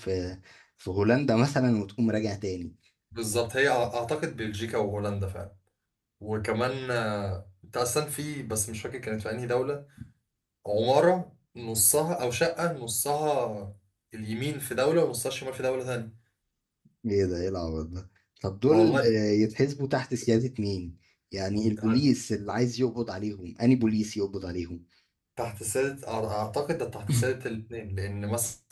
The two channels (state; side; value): identical; both; correlation 1.00